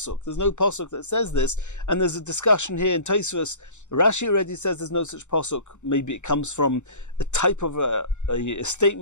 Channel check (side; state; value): right; late; 0.84 ms